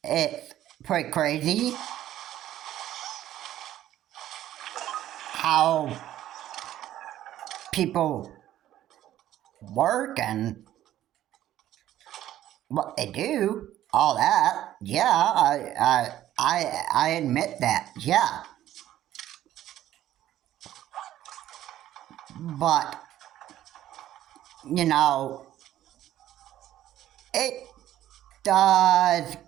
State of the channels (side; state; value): left; quieter; 12.9 dB